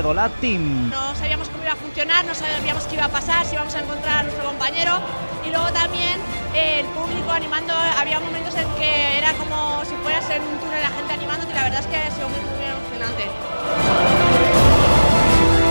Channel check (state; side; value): inverted; both; correlation -1.00